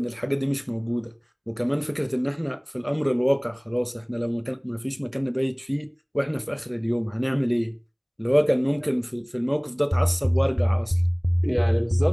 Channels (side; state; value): both; identical; correlation 1.00